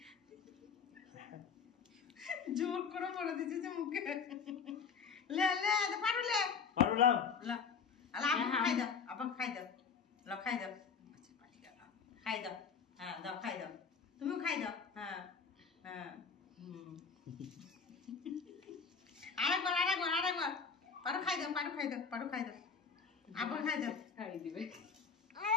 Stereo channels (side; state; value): right; quieter; 5.9 dB